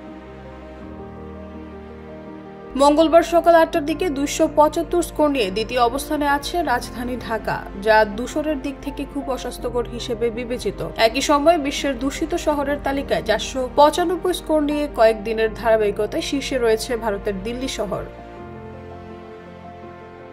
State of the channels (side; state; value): both; identical; correlation 1.00